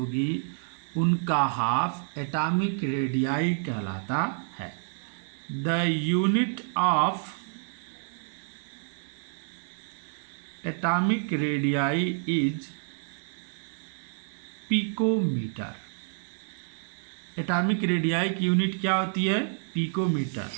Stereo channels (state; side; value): silent; left; digital silence